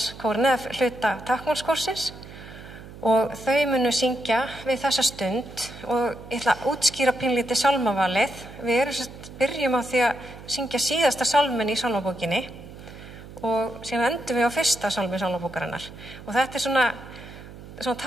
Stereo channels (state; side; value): noise; right; hum, 16 dB below the sound